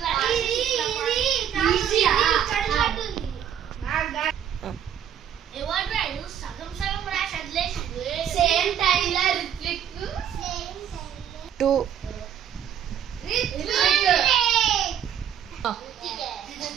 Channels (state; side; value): quieter; left; 9.3 dB